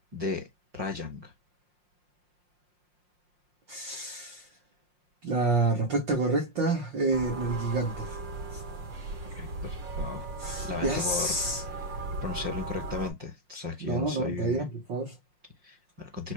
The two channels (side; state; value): left; late; 5.6 ms